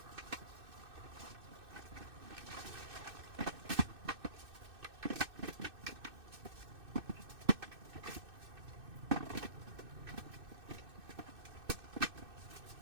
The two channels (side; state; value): left; late; 2.6 ms